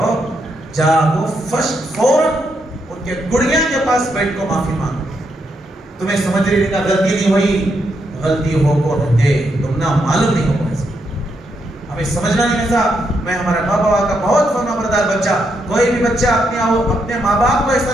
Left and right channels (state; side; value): normal; both; correlation 0.79